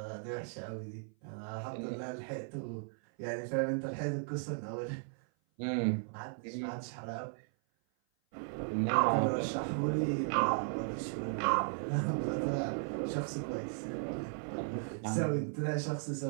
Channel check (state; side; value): silent; left; 54 dB below the other